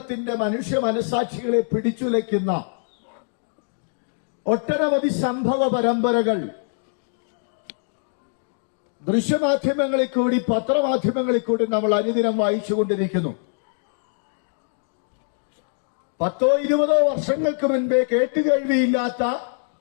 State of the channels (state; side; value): silent; right; digital silence